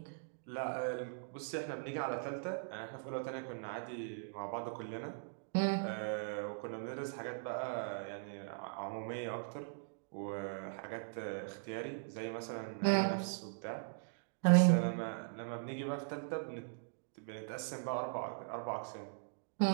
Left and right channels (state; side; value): silent; left; digital silence